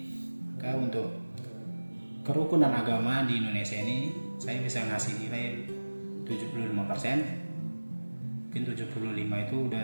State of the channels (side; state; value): both; inverted; correlation -1.00